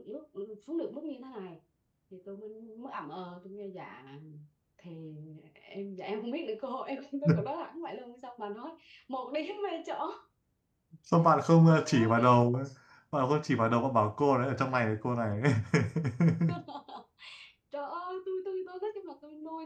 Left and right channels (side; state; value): both; identical; correlation 1.00